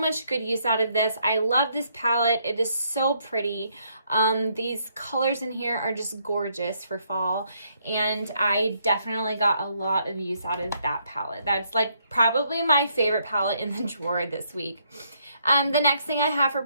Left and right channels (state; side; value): inverted; both; correlation -0.72